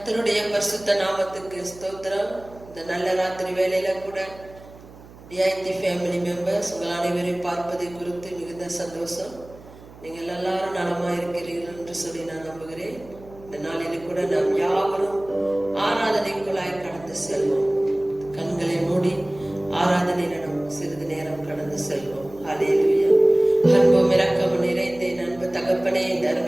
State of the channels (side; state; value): right; noise; hum, 20 dB below the sound